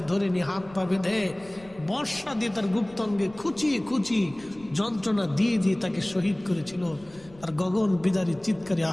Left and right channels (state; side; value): noise; left; rumble, 23 dB below the sound